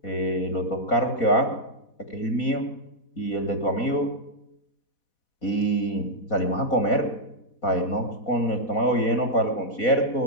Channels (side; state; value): right; late; 4.1 ms